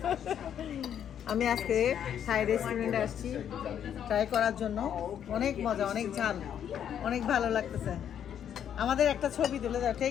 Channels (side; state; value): right; quieter; 9.3 dB